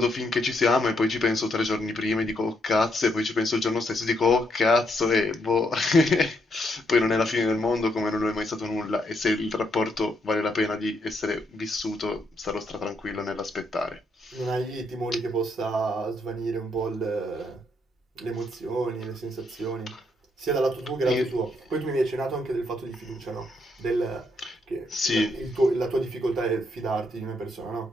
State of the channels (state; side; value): normal; both; correlation 0.76